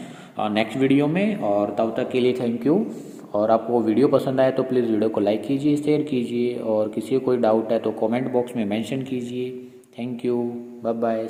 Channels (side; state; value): both; identical; correlation 1.00